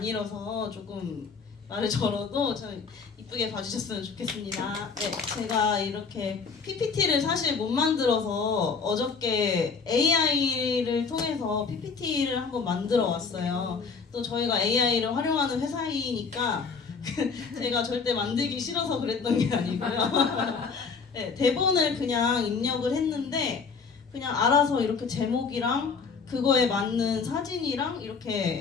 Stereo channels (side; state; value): right; quieter; 5.2 dB